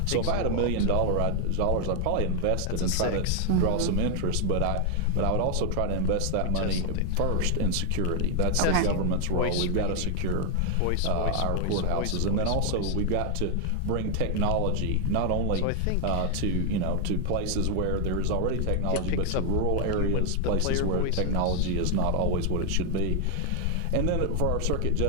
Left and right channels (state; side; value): different; both; correlation 0.00